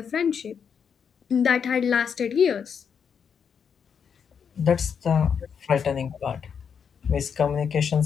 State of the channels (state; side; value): quieter; right; 7.0 dB